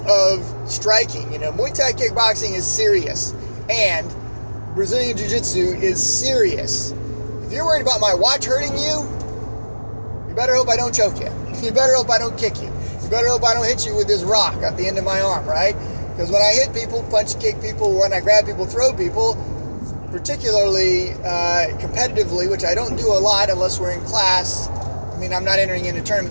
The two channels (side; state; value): both; inverted; correlation -1.00